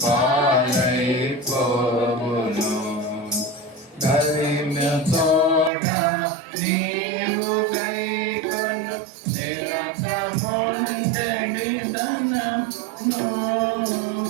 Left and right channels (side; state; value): left; drops out; at 5.7 s